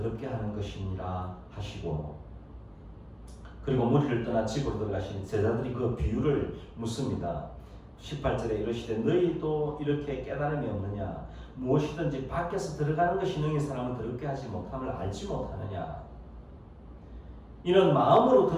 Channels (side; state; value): both; identical; correlation 1.00